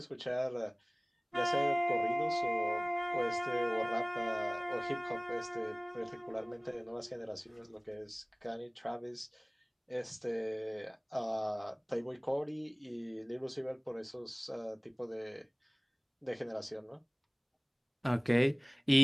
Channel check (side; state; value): both; identical; correlation 1.00